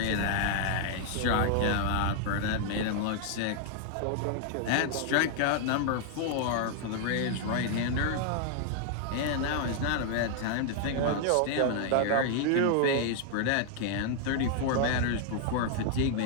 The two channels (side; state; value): both; different; correlation 0.00